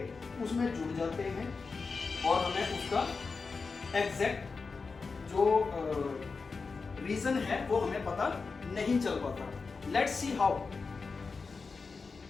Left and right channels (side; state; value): right; quieter; 4.6 dB